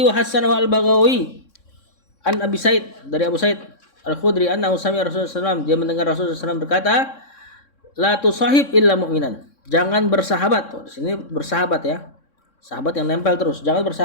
wa Hasan wa Al-Baghawi an Abi Said, dari Abu Said Al-Khudri annahu sami'a Rasulullah SAW, dia mendengar Rasulullah SAW berkata, "La tusahib illa mu'minan." Jangan bersahabat. Di sini bersahabat ya. Sahabat yang nempel terus. Jangan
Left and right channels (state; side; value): late; right; 3.6 ms